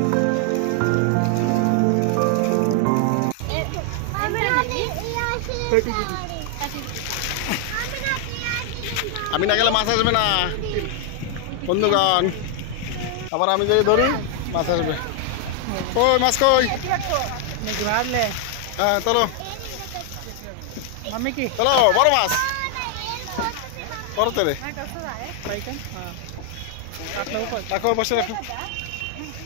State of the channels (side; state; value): both; different; correlation 0.00